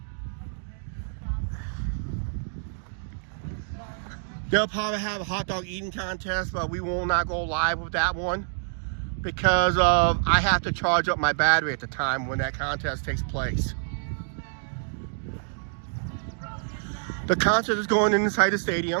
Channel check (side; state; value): left; silent; digital silence